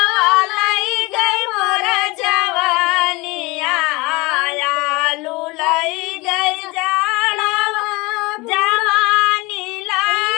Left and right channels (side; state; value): right; quieter; 24.3 dB